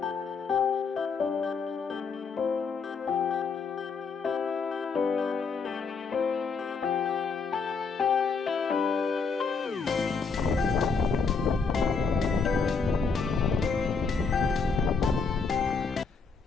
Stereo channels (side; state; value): right; quieter; 5.0 dB